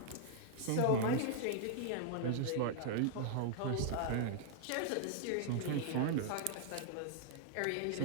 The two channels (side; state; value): both; different; correlation -0.01